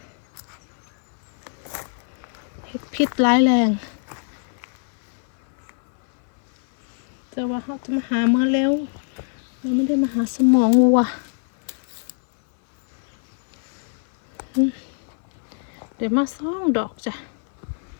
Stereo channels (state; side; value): silent; right; 58 dB below the other